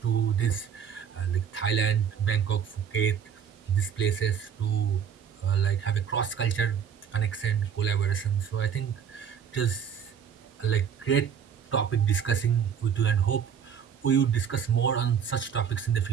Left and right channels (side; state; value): left; quieter; 7.7 dB